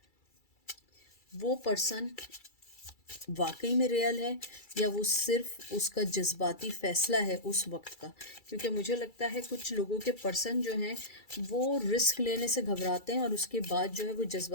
वो पर्सन वाकई में रियल है या वो सिर्फ उसका जज्बाती फैसला है उस वक्त का। क्योंकि मुझे लगता है कुछ लोगों के पर्सन जो हैं वो रिस्क लेने से घबराते हैं और उसके बाद जो है वो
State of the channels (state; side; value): late; right; 2.3 ms